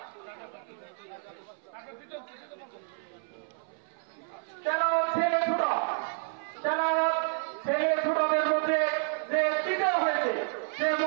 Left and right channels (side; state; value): left; silent; 58 dB below the other